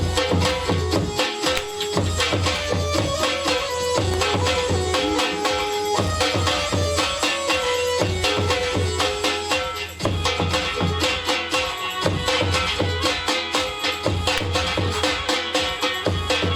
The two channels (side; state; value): both; identical; correlation 1.00